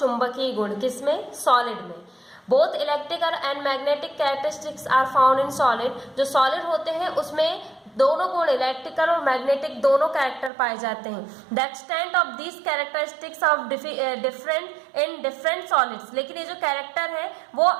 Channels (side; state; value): left; drops out; at 10.5 s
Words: गुण। किसमें? सॉलिड में। Both electrical and magnetic characteristics are found in solid. जो सॉलिड होते हैं उसमें दोनों गुण इलेक्ट्रिकल और मैग्नेटिक दोनों कैरेक्टर पाए जाते हैं। The extent of these characteristics of different in different solids. लेकिन ये जो कैरेक्टर है वो